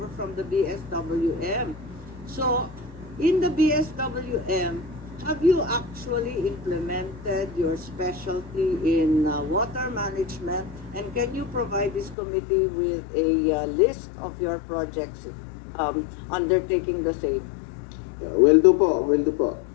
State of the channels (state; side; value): drops out; right; at 12.2 s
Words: from the BSWM. So, in the BSWM, have you actually implemented your specialty in water management? And can you provide this committee with a list of your projects undertaking the same? will do po.